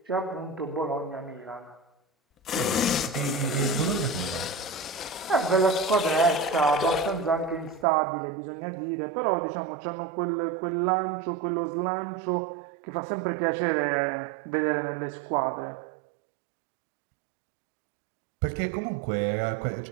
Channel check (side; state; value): left; drops out; at 7.9 s